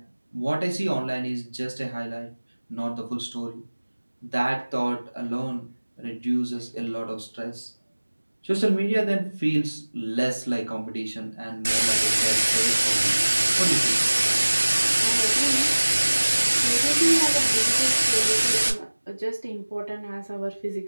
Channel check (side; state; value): both; inverted; correlation -1.00